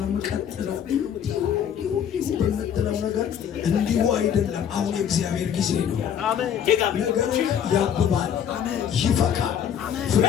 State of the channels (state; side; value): quieter; right; 8.8 dB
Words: የምቀጥለው? እንዲሁ በምትለው ነገር እንዲሁ አይደለም። አሁን የእግዚአብሔር ጊዜ ነው። ነገርህ ያብባል፣ ይፈካል፣ ፍሬ